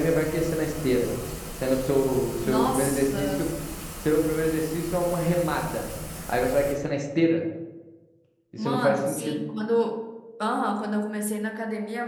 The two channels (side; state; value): both; identical; correlation 1.00